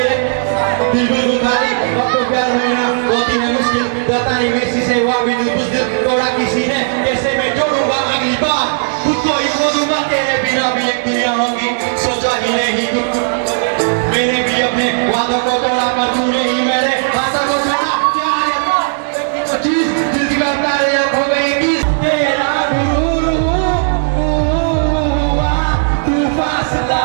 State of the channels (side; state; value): left; silent; digital silence